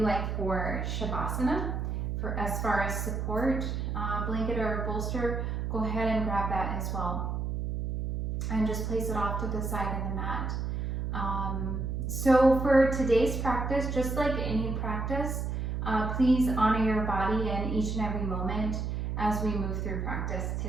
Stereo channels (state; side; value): noise; right; hum, 2 dB below the sound